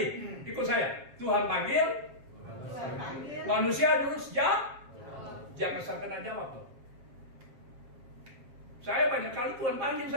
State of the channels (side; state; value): left; late; 7.4 ms